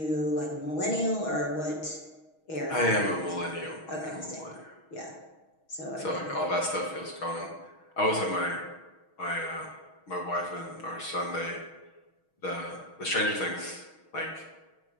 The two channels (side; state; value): right; late; 6.3 ms